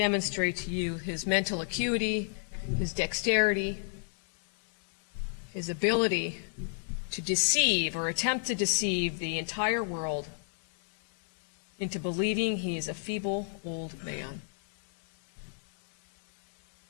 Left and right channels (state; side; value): silent; right; digital silence